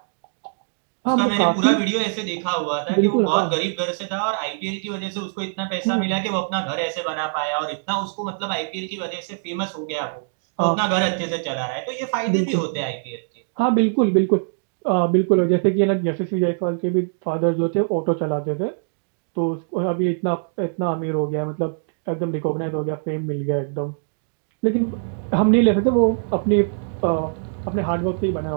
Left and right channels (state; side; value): silent; left; digital silence